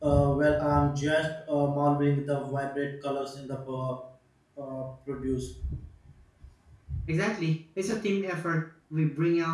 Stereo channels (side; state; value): both; identical; correlation 1.00